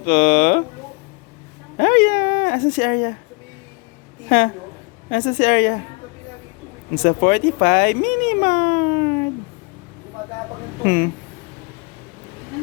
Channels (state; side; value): quieter; right; 31.3 dB